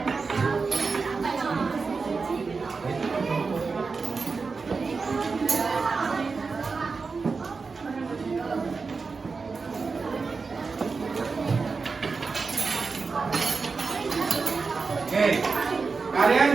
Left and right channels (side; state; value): left; quieter; 4.6 dB